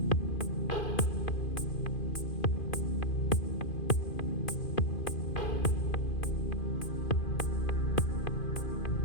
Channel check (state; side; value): late; right; 2.5 ms